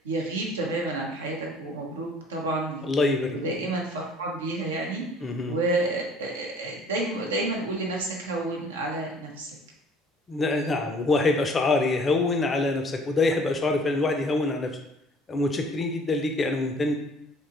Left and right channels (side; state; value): both; normal; correlation 0.53